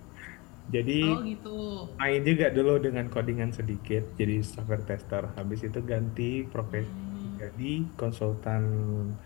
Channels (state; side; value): quieter; right; 26.1 dB